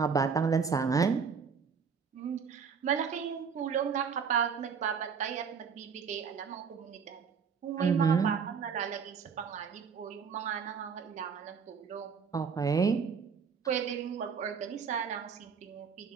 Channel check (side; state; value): left; quieter; 6.1 dB